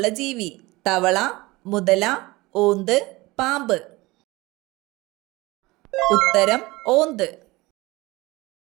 ജീവി: തവള, മുതല, ഓന്ത്, പാമ്പ്. ഉത്തരം ഓന്ത്.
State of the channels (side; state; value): left; quieter; 21.4 dB